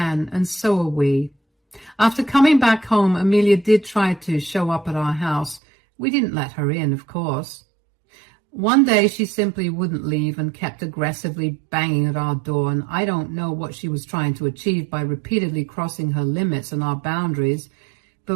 and so are we. After coming back home, Amelia did try to show up at our house. We didn't let her in, of course. One day she simply wouldn't leave and kept aggressively banging at our door, and I don't know what she was trying to achieve by repeatedly crossing her limits and our boundaries,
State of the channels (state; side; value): drops out; left; at 5.6 s